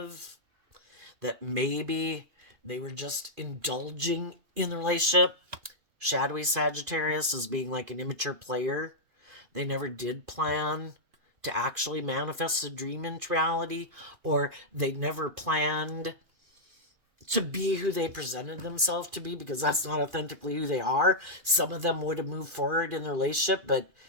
that maybe they were just indulging in the relationship. Shadowy Sagittarius is being like an immature player. They never did plan to actually manifest a dream into reality, or they never planned to be who they presented themselves to be, because that's not authentically who they are. Some of them would have moved forward in their relationship, but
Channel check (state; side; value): late; left; 2.5 ms